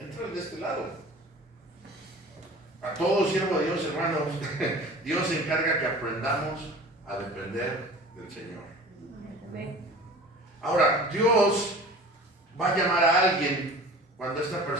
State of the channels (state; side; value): normal; both; correlation 0.42